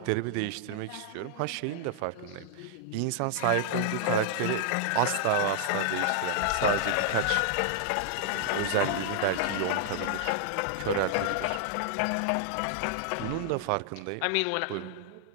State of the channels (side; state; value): both; different; correlation -0.01